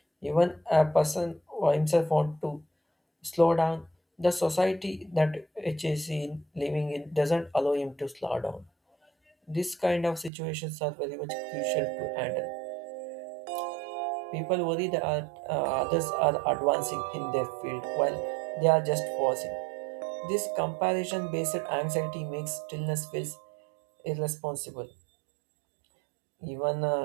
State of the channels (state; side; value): drops out; left; at 10.3 s